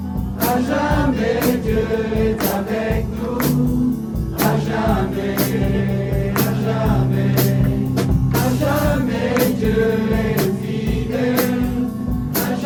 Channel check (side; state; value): both; identical; correlation 1.00